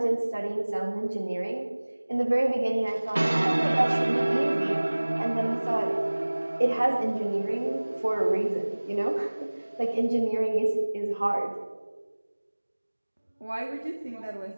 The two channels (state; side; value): inverted; both; correlation -1.00